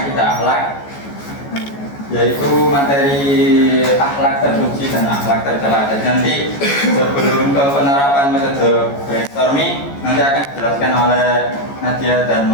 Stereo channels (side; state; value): right; late; 14 ms